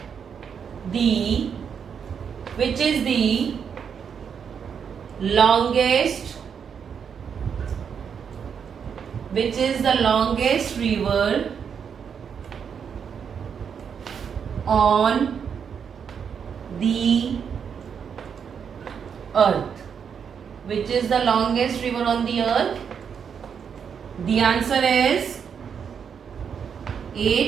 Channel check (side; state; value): left; quieter; 7.1 dB